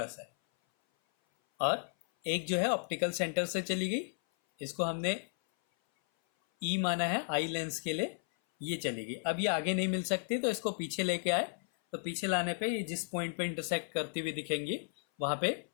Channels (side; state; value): right; silent; 55 dB below the other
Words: है। और एक जो है ऑप्टिकल सेंटर से चली गई, इसको हमने ई माना है आई लेंस के लिए, ये चली गई। अब ये आगे नहीं मिल सकती तो इसको पीछे लेके आए, तो पीछे लाने पे ये जिस पॉइंट पे इंटरसेक्ट करती हुई दिखेंगी वहां पे